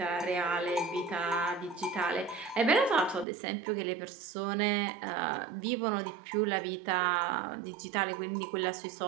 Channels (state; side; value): drops out; left; at 3.2 s